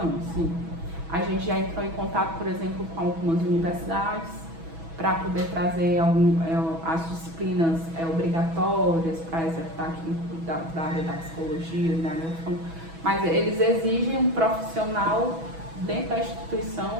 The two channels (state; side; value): late; left; 6.1 ms